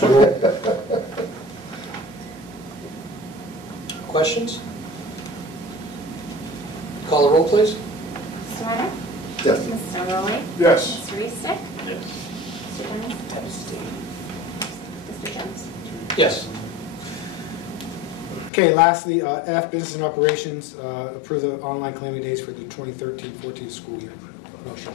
Roy. Questions? Call the roll, please. Mr. Leonard? Yes. Mr. Rowley? Yes. Mr. Eastick? Yes. Mr. Jones? Mr. Jones? Yes. Okay, lastly, F, business and operations, approve the online claiming days for the 2013-14 school year. Motion.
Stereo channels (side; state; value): right; drops out; at 18.5 s